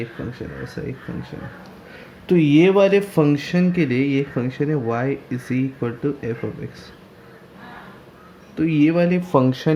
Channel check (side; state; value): both; identical; correlation 1.00